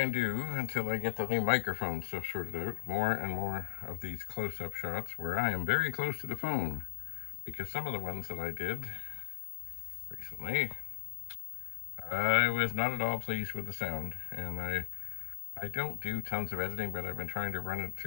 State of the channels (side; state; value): right; silent; digital silence